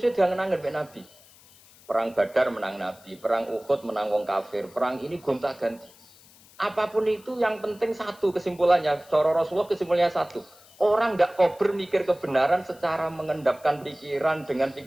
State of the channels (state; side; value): noise; left; hiss, 25 dB below the sound